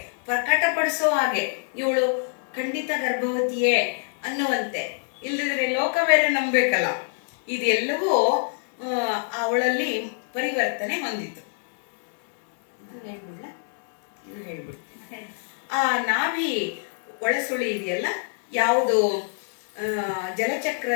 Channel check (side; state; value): right; silent; 62 dB below the other